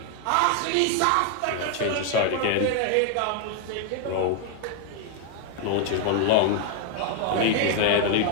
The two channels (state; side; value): different; both; correlation 0.00